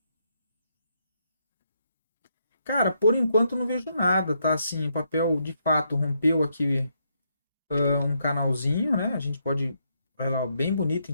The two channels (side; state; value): both; inverted; correlation -0.77